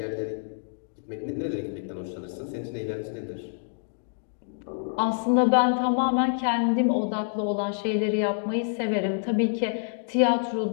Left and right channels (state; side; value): silent; right; digital silence